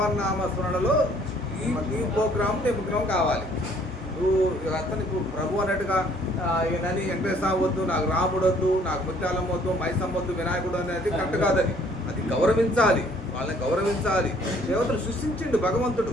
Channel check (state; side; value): normal; both; correlation 0.60